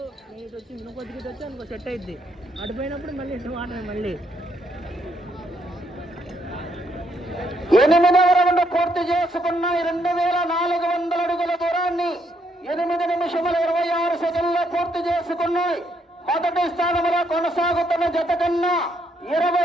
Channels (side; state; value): both; normal; correlation 0.74